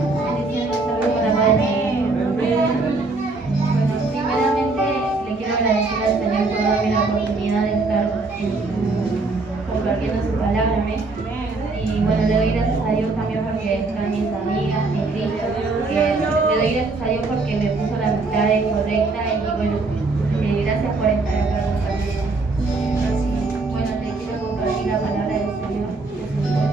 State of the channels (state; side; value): quieter; left; 3.5 dB